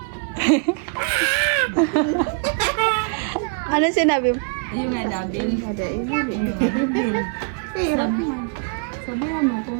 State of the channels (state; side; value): quieter; left; 36.7 dB